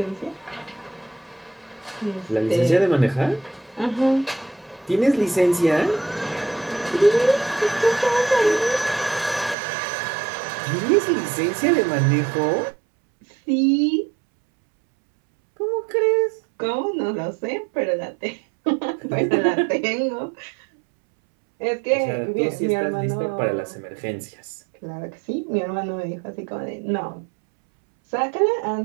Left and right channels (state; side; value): drops out; left; at 9.6 s